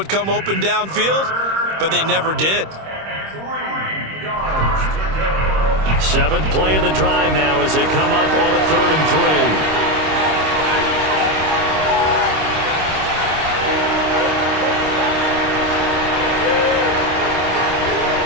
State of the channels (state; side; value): late; left; 26 ms